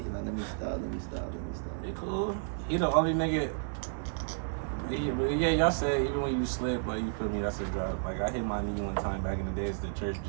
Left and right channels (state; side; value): silent; left; digital silence